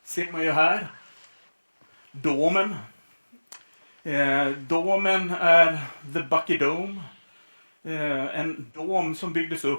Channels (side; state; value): both; inverted; correlation -1.00